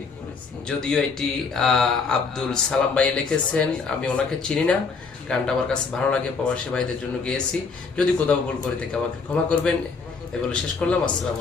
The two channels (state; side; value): quieter; right; 4.9 dB